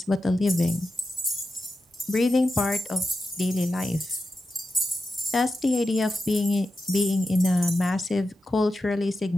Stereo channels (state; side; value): normal; both; correlation 0.90